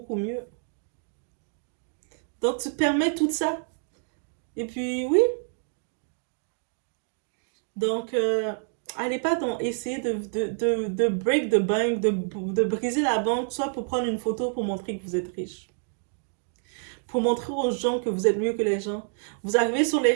mieux? Donc tu te permets tout ça. Et puis oui, donc allez pas donc essayer de break the bank, de briser la banque, soit pour prendre une photo pour montrer que vous êtes riche. Pour montrer aux gens que vous êtes mieux que les gens. Vous arrivez sur les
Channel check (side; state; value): left; silent; 60 dB below the other